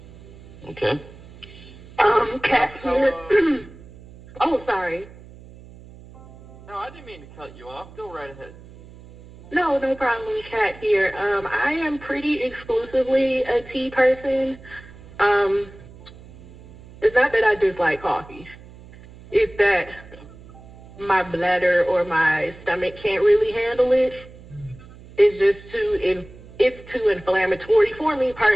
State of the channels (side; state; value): right; noise; hum, 20 dB below the sound